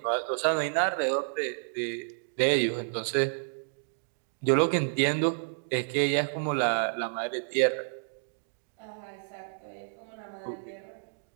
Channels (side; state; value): left; silent; digital silence